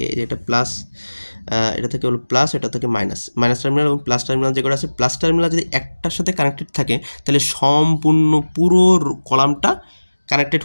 এটা প্লাস, এটা থেকে হলো প্লাস, এটা থেকে মাইনাস, মাইনাস টার্মিনাল এবং প্লাস টার্মিনাল যেগুলো আছে, প্লাস টার্মিনাল যদি একটার সাথে কানেক্টেড থাকে তাহলে সম্পূর্ণ পুরো কলামটা কানেক্টেড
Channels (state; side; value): inverted; both; correlation -1.00